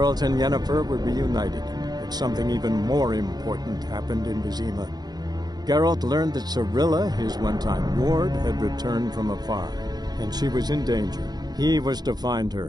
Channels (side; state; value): left; late; 0.19 ms